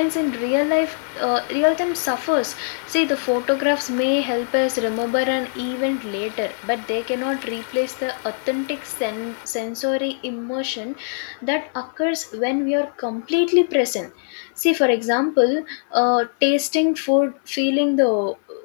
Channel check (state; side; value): silent; right; digital silence